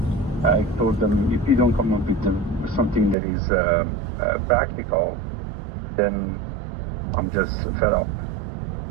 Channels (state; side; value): drops out; left; at 3.2 s